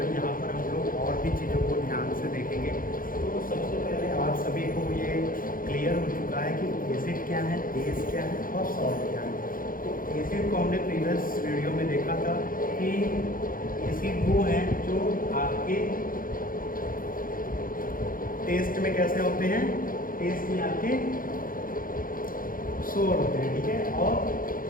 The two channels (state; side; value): late; right; 0.41 ms